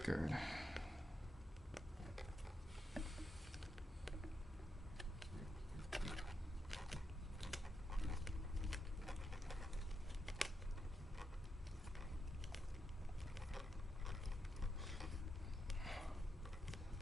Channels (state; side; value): normal; both; correlation 0.83